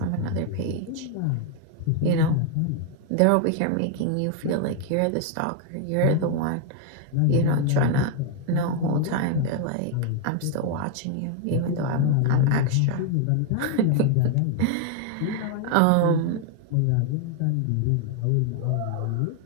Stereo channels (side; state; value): both; different; correlation 0.00